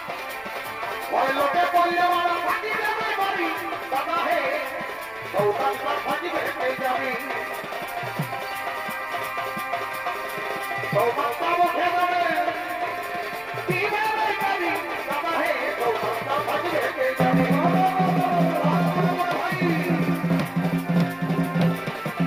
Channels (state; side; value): noise; right; rumble, 27 dB below the sound